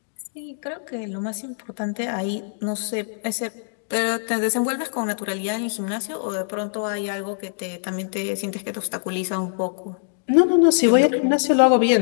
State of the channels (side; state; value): right; silent; digital silence